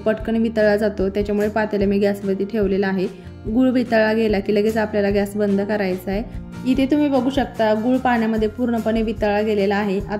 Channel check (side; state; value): both; identical; correlation 1.00